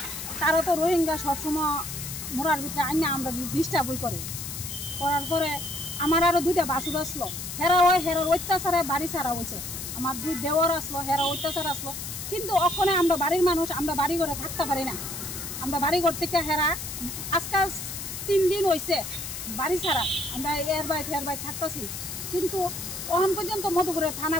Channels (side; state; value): left; noise; hiss, 7 dB below the sound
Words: তারা তো রোহিঙ্গা সবসময় মোড়ার ভিতরে আইনা আমরা ডিস্টার্বই করার পরে আমার আরও 2টা বাসুর আসলো, হেরার অত্যাচারে বাড়ি ছাড়া হয়েছে। আমার 2 দেওয়ার আসলো, হেরা অত্যাচার আসলো। কিন্তু ওখানে আমরা বাড়ির মানুষ, আমরা বাড়ি ঘরে থাকতে পারি না। আমরা বাড়ি ঘর থেকে হেরা আজকাল 3 দিন হয়েছে বাড়ি ছাড়া, আমরা এর বাইর থাকতেছি। কিন্তু এখন পর্যন্ত মধুপুরের থানা